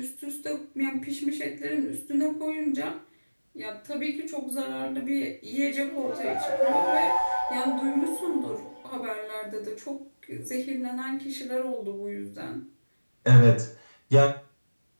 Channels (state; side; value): inverted; both; correlation -1.00